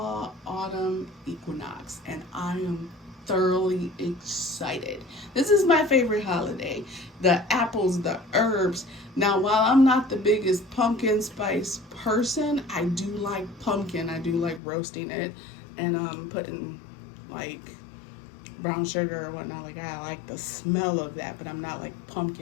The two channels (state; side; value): drops out; right; at 14.6 s